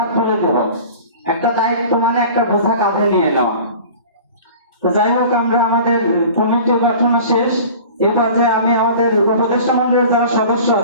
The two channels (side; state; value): both; inverted; correlation -0.41